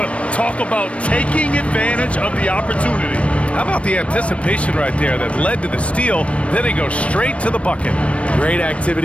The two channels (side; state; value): right; late; 0.062 ms